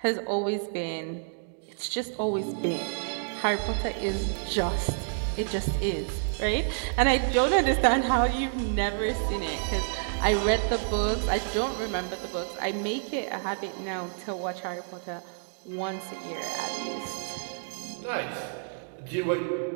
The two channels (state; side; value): silent; left; digital silence